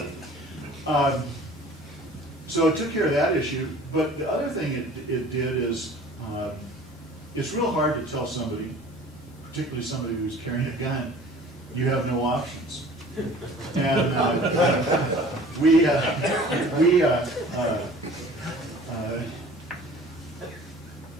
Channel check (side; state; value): both; normal; correlation 0.47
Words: So it took care of that issue, but the other thing it did is, it's real hard to tell somebody, particularly somebody who's carrying a gun, you have no options. And we had